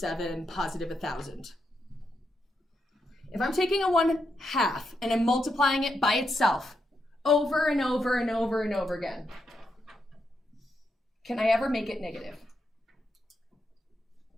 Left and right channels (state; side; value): normal; both; correlation 0.83